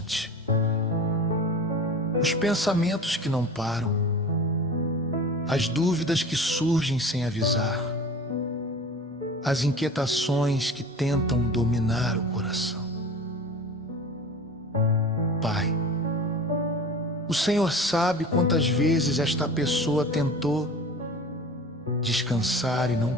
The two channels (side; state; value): both; normal; correlation 0.37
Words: os pensamentos que não param, as dúvidas que surgem sem avisar, as inquietações que tentam dominar o coração. Pai, o Senhor sabe quantas vezes esta pessoa tentou descansar e não